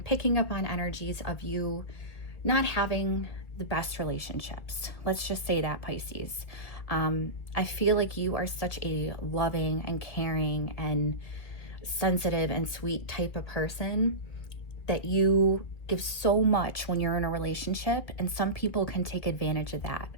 picking up on energies of you not having the best relationships. Let's just say that, Pisces. I feel like you are such a loving and caring and sensitive and sweet type of person that you give so much when you're in a relationship, and some people can take advantage of that.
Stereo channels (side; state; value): right; late; 2.4 ms